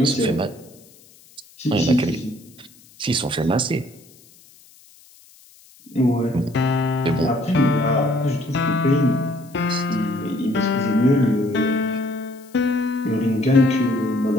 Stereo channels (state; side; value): noise; left; hiss, 26 dB below the sound